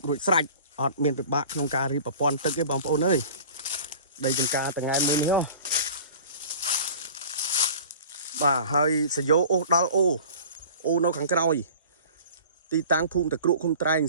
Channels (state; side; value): inverted; both; correlation -0.42